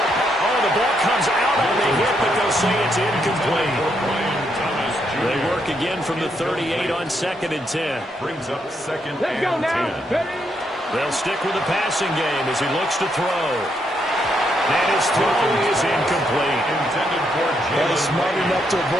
Oh, the ball comes out on the hit, but they'll say it's incomplete. They work again from the 38 on 2nd and 10. Brings up 2nd Let's go and now. 10. Ready? They'll stick with the passing game as he looks to throw. And his throw is incomplete. Intended for Well, he's smart enough to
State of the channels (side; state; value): both; normal; correlation 0.77